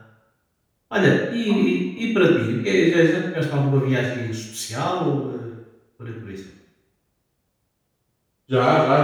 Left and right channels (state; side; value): identical; both; correlation 1.00